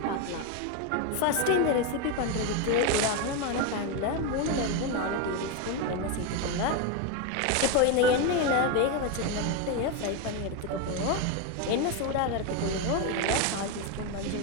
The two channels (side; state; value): both; different; correlation 0.02